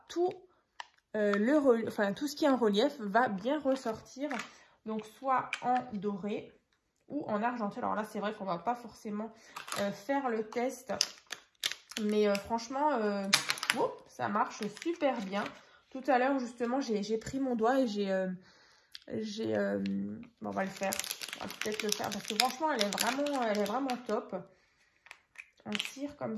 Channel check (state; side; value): identical; both; correlation 1.00